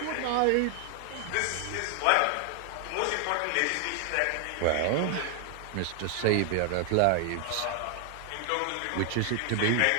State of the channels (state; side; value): different; both; correlation 0.00